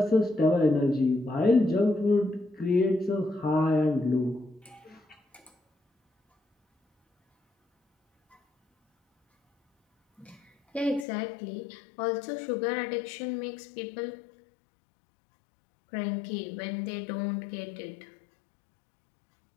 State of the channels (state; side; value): drops out; right; at 11.1 s